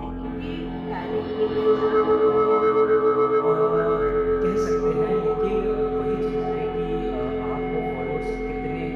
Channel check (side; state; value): both; identical; correlation 1.00